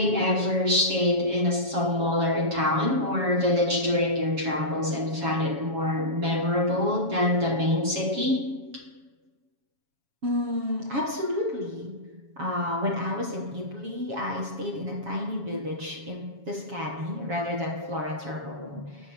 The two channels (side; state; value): left; late; 7.2 ms